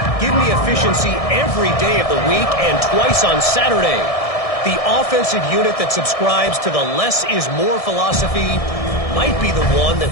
Give me efficiency every day of the week and twice on Saturday. The offensive unit that subscribes to the less is more philosophy might be the one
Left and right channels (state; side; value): late; right; 1.6 ms